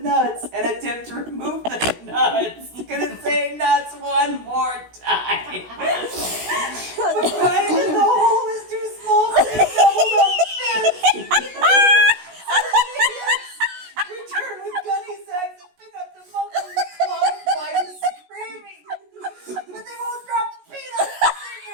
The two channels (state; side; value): late; left; 16 ms